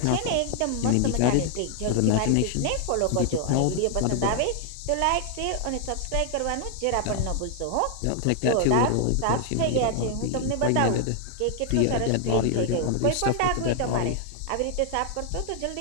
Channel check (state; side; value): different; both; correlation 0.00